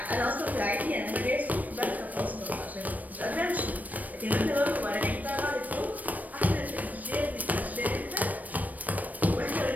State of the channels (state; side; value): late; left; 0.078 ms